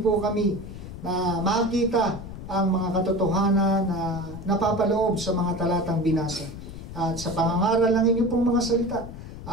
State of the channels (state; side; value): noise; left; rumble, 11 dB below the sound